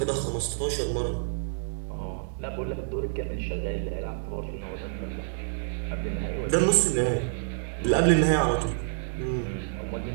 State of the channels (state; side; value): silent; left; 59 dB below the other